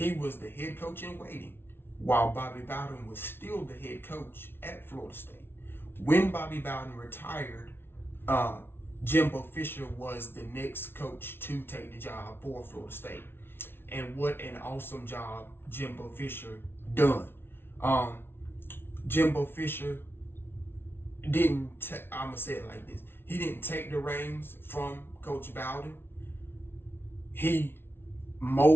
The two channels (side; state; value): right; late; 0.11 ms